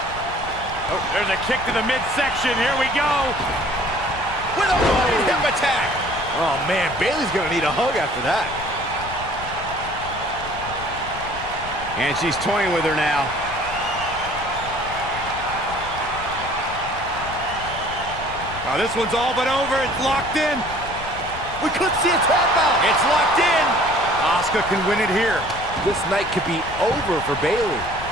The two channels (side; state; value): left; noise; rumble, 13 dB below the sound